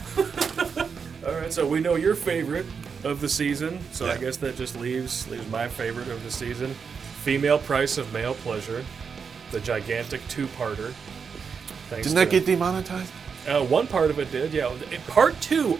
All right, so we know your favorite of the season, so I guess that just leaves my favorite of the season. Female Price of Male Pleasure, the gigantic 2-parter. Didn't that get demonetized? One part of it did, yeah. Part 2,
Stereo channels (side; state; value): left; quieter; 6.0 dB